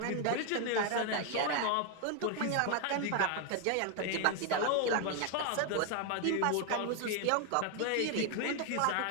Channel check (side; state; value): both; different; correlation 0.00